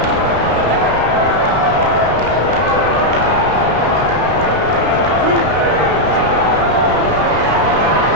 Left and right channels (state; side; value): late; left; 32 ms